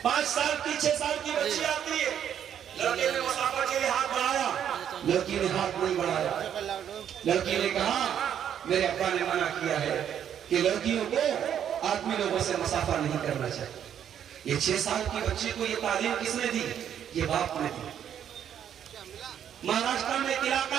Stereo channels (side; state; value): left; quieter; 9.4 dB